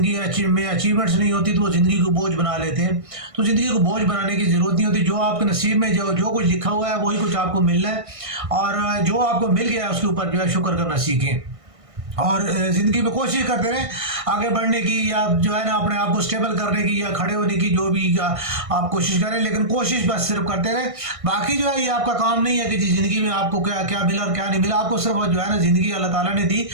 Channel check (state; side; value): late; left; 1.6 ms